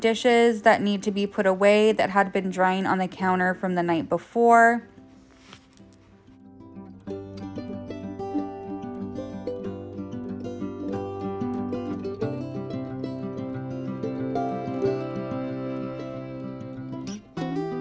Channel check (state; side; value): identical; both; correlation 1.00